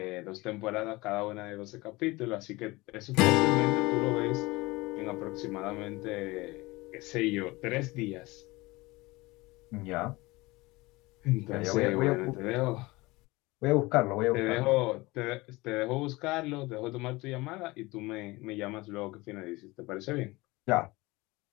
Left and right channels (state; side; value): quieter; right; 22.0 dB